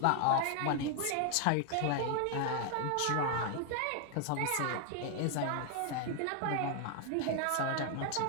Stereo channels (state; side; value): different; both; correlation 0.00